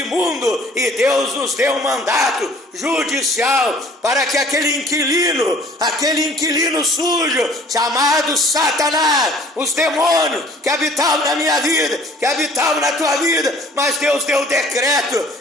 e Deus nos deu um mandato judicial para que aquele inquilino sujo, chamado Satanás, os demônios que habitavam na minha vida, que habitavam na tua vida, mas Deus deu o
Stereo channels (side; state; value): both; normal; correlation 0.53